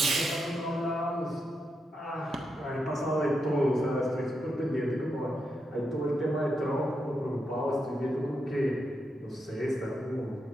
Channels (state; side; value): normal; both; correlation 0.84